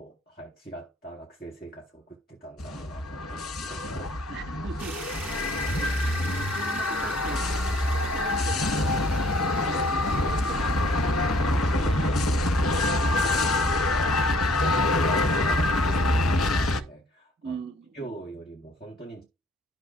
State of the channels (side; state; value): both; normal; correlation 0.59